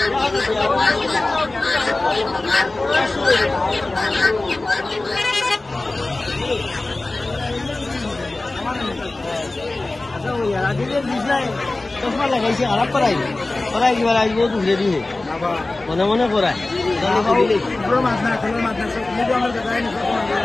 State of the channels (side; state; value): right; quieter; 3.0 dB